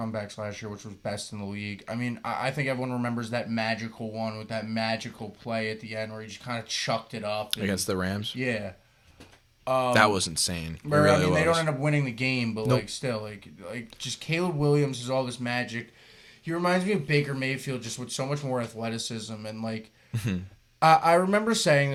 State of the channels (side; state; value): both; identical; correlation 1.00